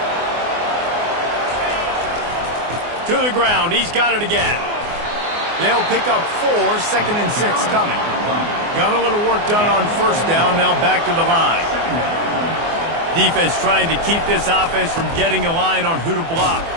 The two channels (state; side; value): late; left; 24 ms